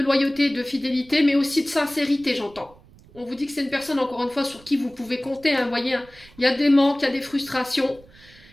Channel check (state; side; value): noise; right; rumble, 25 dB below the sound